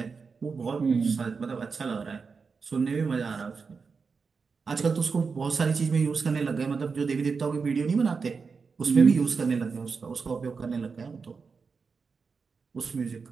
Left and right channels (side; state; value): left; quieter; 5.1 dB